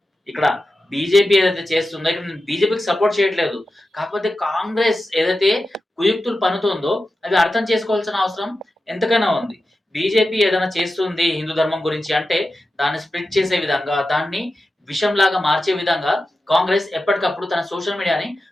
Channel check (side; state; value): both; normal; correlation 0.92